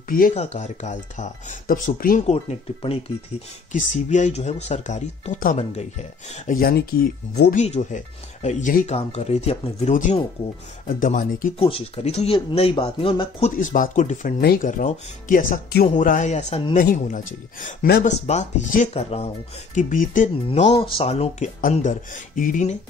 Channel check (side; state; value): right; quieter; 4.7 dB